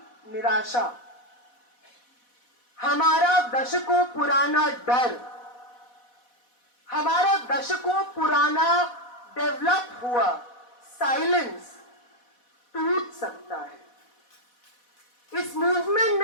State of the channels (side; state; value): right; late; 4.1 ms